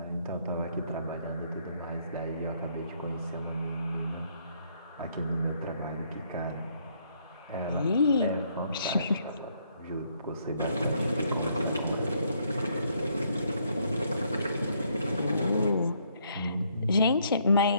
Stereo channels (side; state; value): both; inverted; correlation -0.70